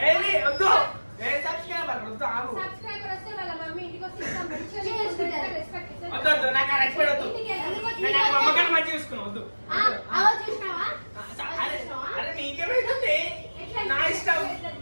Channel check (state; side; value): inverted; both; correlation -1.00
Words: ఏది వద్దు ఏ సబ్స్క్రైబర్ వద్దు ఆగు సబ్స్క్రైబర్ వస్తే వాళ్ళ మమ్మీ ఇంటికి వస్తే ఇస్తాం. మంచిగా చేసుకుంటారు. రెస్పెక్ట్ ఇస్తాం. వద్దు వద్దు నాకు ఆ రెస్పెక్ట్ వద్దు ఇంటికి ఎందుకు వచ్చి నేను నాకు అమ్మగారిని మంచిగా చూసుకున్నా వద్దు ఆ, అవో చూసినావా? అరే అరే నీకేమైతుంది ఎట్లా నా ఇష్టం ఎట్లా